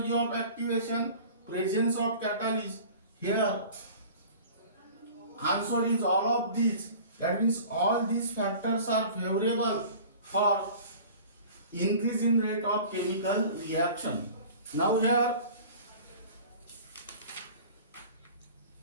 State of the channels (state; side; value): inverted; both; correlation -0.43